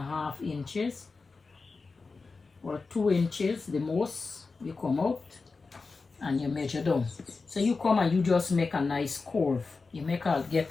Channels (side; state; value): right; quieter; 4.2 dB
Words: inches or 2 inches, the most. You come out and you measure down. So you come and you just make a nice curve. You get